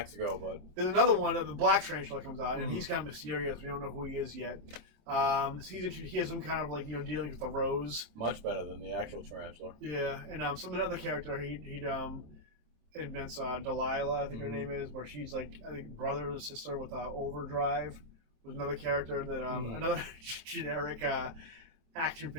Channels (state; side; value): late; left; 27 ms